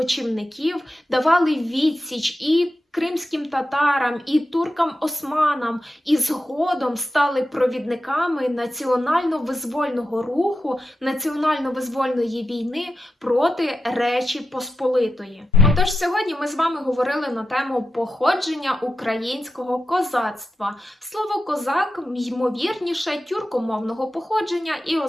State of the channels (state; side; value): normal; both; correlation 0.90